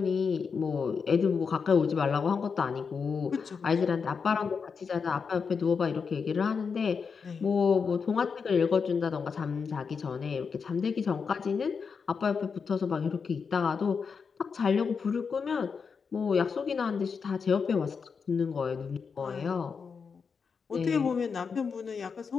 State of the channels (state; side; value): quieter; right; 5.7 dB